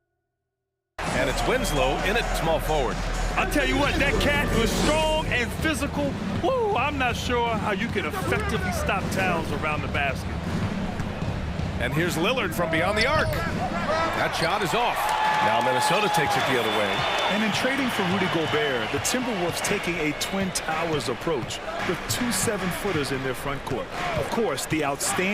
And it's Winslow in at small forward. I'll tell you what, that cat was strong and physical. Woo, I'm not sure how you can effectively stop Towns around the basket. And here's Lillard from beyond the arc. That shot is off. Now Minnesota takes it the other way. And in trading for Rudy Gobert, the Timberwolves taking a Twin Towers approach with 2 7-footers in their front court. Of course, the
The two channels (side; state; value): both; identical; correlation 1.00